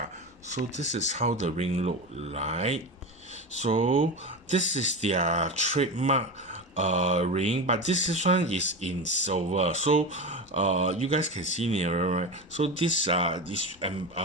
so this is how the ring look like. So this is their trademark ring, but one is in silver. So you guys can see nearer, right? So this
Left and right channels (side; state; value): both; normal; correlation 0.23